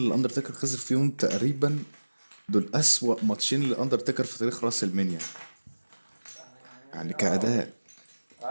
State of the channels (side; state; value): both; inverted; correlation -1.00